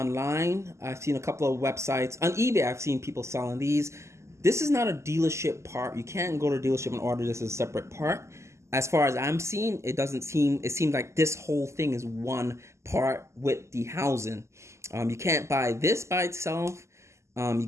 I've seen a couple of websites. On eBay, I've seen people selling these. This is not a dealership part. You can't go to a dealership and order this as a separate part. As far as I'm seeing, it seems like this whole thing is one part with the housing. You can't buy this by itself. You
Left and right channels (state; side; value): late; left; 0.13 ms